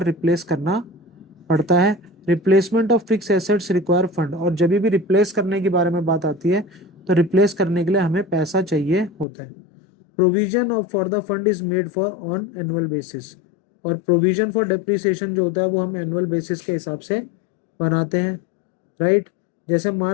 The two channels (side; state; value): right; drops out; at 9.2 s